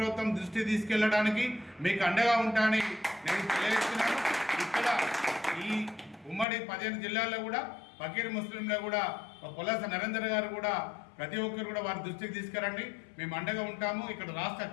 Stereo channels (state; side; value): drops out; right; at 6.5 s